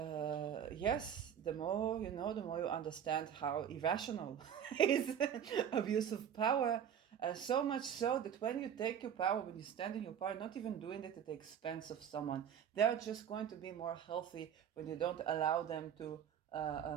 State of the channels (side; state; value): left; quieter; 8.8 dB